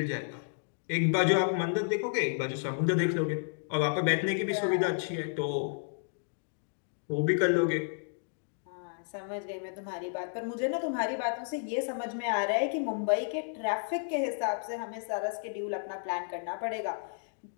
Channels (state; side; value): silent; right; digital silence